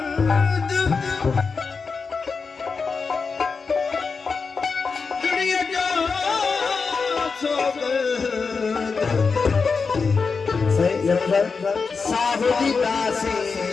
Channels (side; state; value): right; quieter; 4.9 dB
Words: दुनिया जो साहुदी दासी